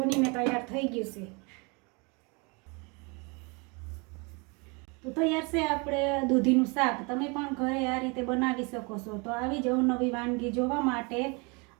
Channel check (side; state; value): left; quieter; 30.6 dB